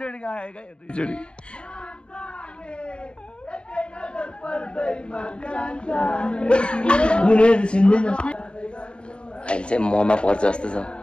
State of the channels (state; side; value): late; right; 0.053 ms